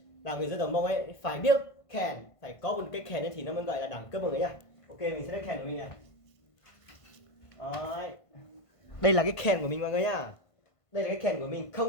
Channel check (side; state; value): right; late; 1.5 ms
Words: Là người dân tộc Mông ấy phải biết kèn, phải có một cái kèn ấy thì nó mới gọi là đẳng cấp mọi người nhá. Ok, mình sẽ lấy kèn của mình này. Đấy. Đây là cái kèn của mình mọi người nhá. Đây là cái kèn của mình,